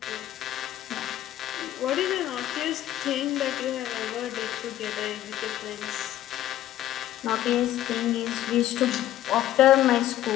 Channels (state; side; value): quieter; right; 13.2 dB